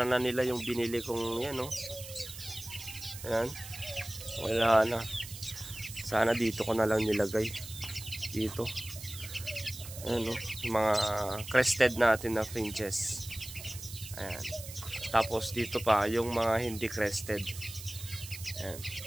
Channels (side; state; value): right; noise; hiss, 12 dB below the sound